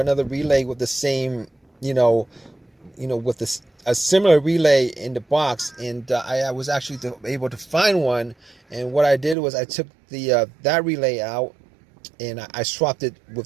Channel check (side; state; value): left; drops out; at 9.3 s